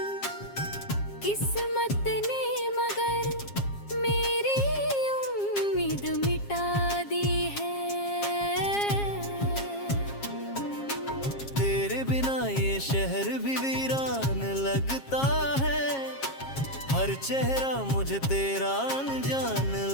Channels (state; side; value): late; right; 7.4 ms